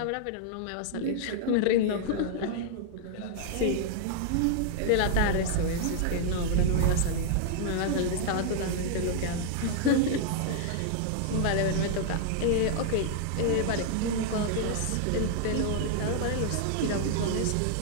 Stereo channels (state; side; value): different; both; correlation -0.01